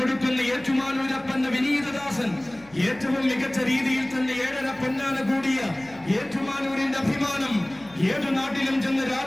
ഏറ്റുമാനൂരപ്പന്റെ വിനീതദാസൻ, ഏറ്റവും മികച്ച രീതിയിൽ തന്നെ 7.5 പൊന്നാന കൂടിയ ഏറ്റുമാനൂരിന്റെ അഭിമാനം, ഏതു നാട്ടിലും ചെന്ന്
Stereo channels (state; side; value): noise; left; hum, 25 dB below the sound